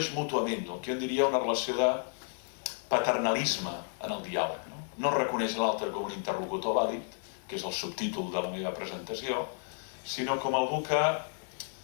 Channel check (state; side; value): silent; right; digital silence